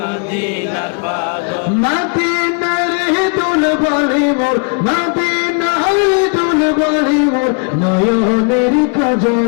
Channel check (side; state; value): right; quieter; 38.5 dB